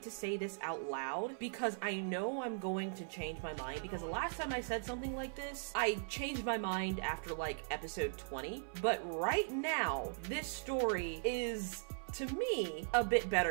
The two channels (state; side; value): silent; left; 52 dB below the other